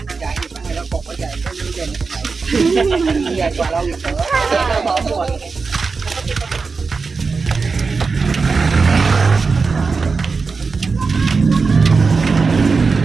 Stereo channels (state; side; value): quieter; left; 4.6 dB